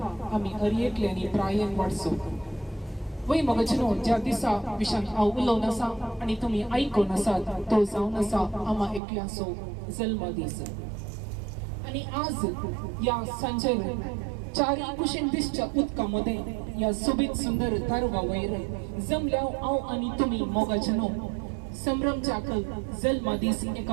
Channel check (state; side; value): drops out; left; at 9.0 s